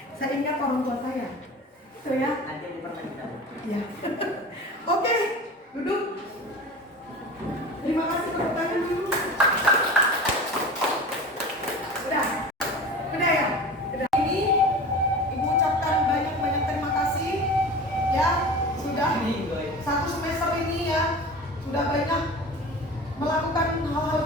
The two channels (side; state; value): both; normal; correlation 0.35